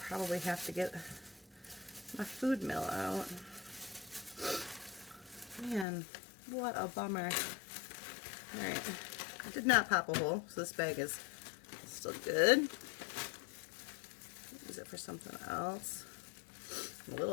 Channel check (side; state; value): right; drops out; at 5.9 s